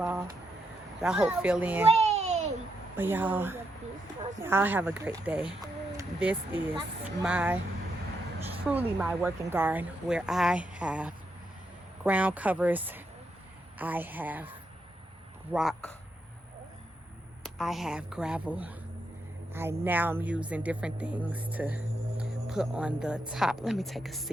that I hope fill in. But y'all have a great day. This is truly my working garden where I have ground covers, I have rock, I have gravel, I now am using different things to put on the top. Let me take a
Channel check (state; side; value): normal; both; correlation 0.81